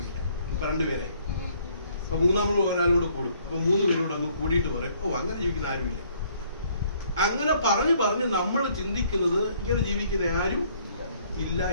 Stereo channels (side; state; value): both; inverted; correlation -0.63